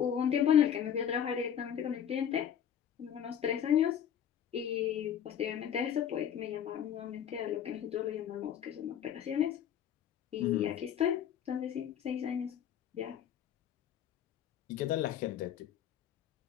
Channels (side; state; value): right; quieter; 9.4 dB